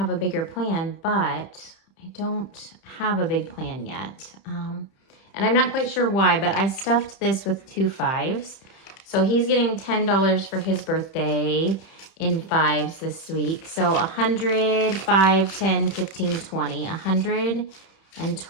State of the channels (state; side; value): late; right; 31 ms